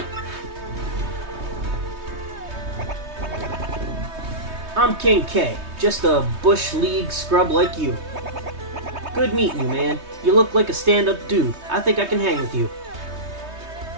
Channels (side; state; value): left; late; 3.2 ms